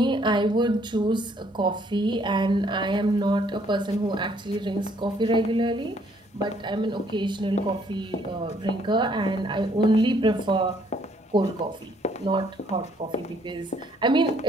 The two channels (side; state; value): both; normal; correlation 0.65